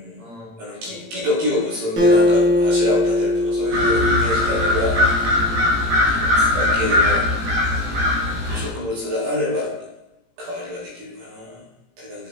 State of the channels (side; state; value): left; late; 18 ms